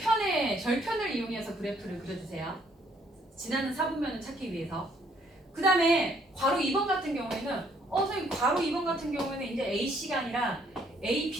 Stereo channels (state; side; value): normal; both; correlation 0.66